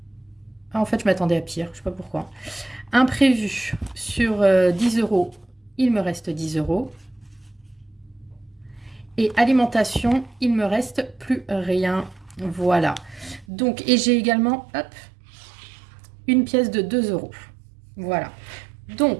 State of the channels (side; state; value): left; drops out; at 13.5 s